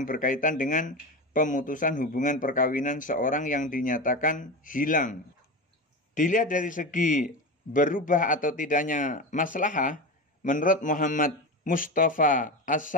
berkaitan dengan pemutusan hubungan perkawinan seorang yang dinyatakan hilang. Dilihat dari segi berubah atau tidaknya maslahah, menurut Muhammad Mustafa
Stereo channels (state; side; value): normal; both; correlation 0.23